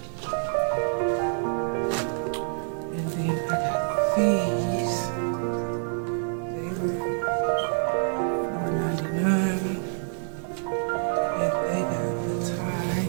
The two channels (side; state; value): left; silent; digital silence